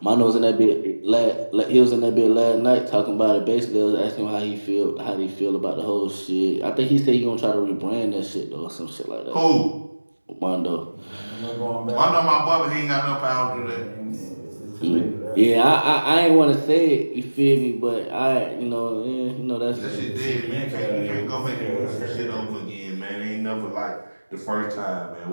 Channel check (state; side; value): inverted; both; correlation -1.00